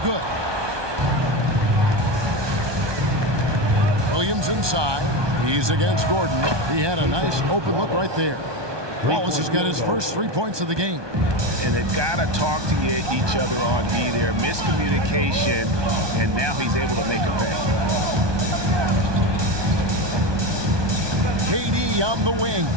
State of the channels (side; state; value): left; late; 1.2 ms